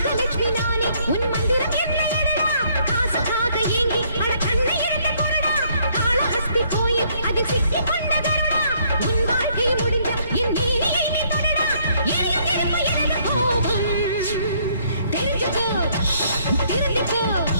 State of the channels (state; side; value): inverted; both; correlation -0.67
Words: நானே உன் மந்திரம் என்னடா, காசுக்காக ஏங்கி அட கண்ணை இறந்து போடா, காளஹஸ்தி கோயில் அதில் சிக்கி கொண்டதடா, உன் வாழ்க்கை முடிஞ்ச என் நீரியை நீ தொடடா, எரியும் நெருப்பு எனது கோபம். தெரிஞ்சுக்கோ தெரிஞ்சுக்கோ